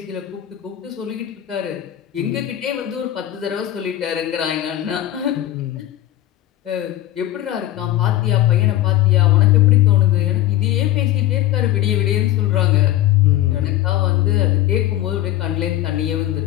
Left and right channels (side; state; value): right; quieter; 13.8 dB